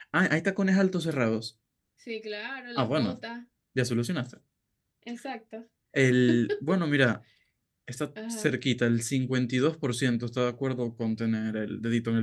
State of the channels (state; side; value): identical; both; correlation 1.00